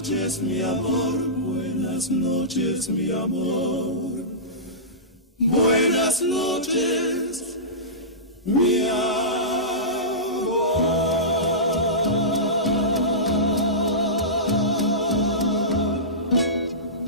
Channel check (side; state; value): both; normal; correlation -0.20